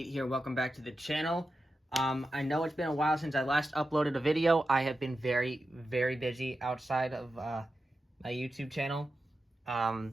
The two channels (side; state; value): both; normal; correlation 0.91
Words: here. Welcome back to the channel. I know it's been a while since I last uploaded a video. I have been very, very busy outside of my YouTube channel.